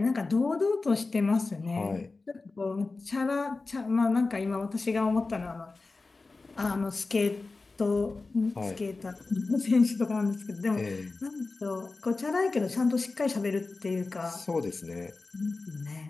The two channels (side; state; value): right; quieter; 3.7 dB